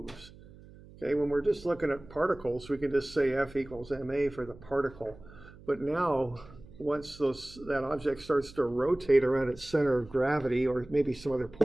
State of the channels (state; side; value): noise; right; hum, 20 dB below the sound